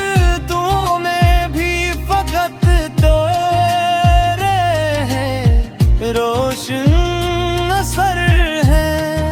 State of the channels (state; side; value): identical; both; correlation 1.00